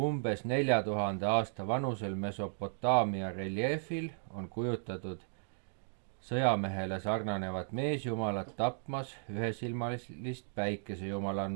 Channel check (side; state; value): left; silent; digital silence